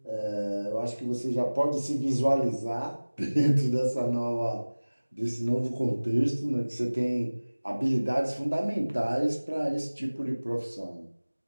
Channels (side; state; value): both; inverted; correlation -1.00